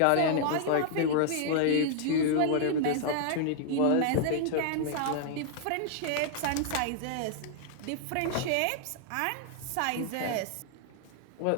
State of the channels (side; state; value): both; different; correlation -0.01